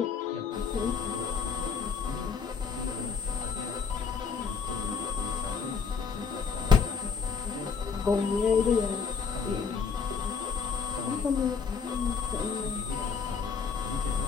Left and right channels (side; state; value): right; quieter; 5.8 dB